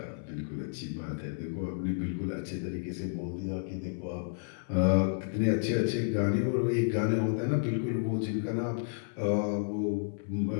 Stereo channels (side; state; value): right; silent; 57 dB below the other